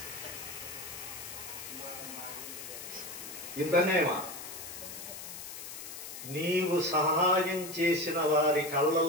ఇంతనేమా నీవు సహాయం చేసిన వారి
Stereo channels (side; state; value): left; noise; hiss, 10 dB below the sound